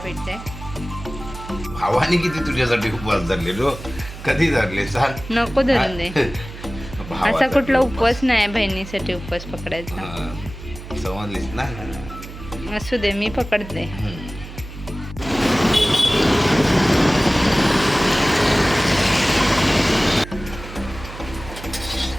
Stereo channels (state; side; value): noise; right; hum, 13 dB below the sound